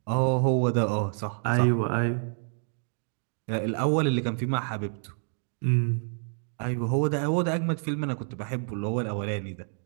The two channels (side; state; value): left; silent; 59 dB below the other